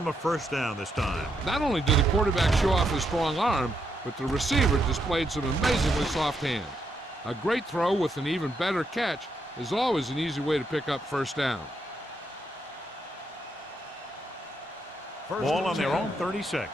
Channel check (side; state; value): both; normal; correlation 0.79